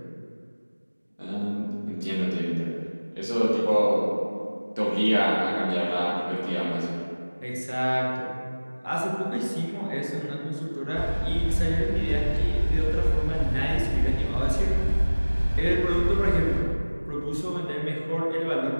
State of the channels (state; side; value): inverted; both; correlation -1.00